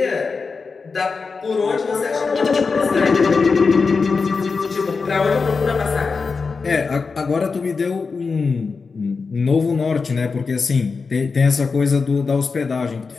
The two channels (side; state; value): right; quieter; 4.7 dB